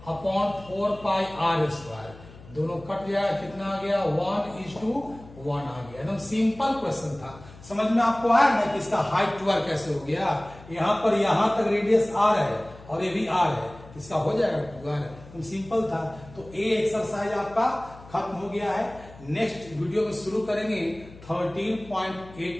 अपॉन 4 पाई r स्क्वायर, दोनों कट जाएगा, कितना आ गया 1:1 आ गया। एकदम सिंपल क्वेश्चन था, समझ में आपको आया ना कि इसका हाइट 2r कैसे हो गया। यहां पर यहां तक रेडियस r है और ये भी r है, इसका हो जाएगा 2r, एकदम सिंपल था। तो ए एक्सरसाइज आपका खत्म हो गया है। नेक्स्ट वीडियो में शुरू करेंगे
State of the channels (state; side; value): noise; left; hum, 20 dB below the sound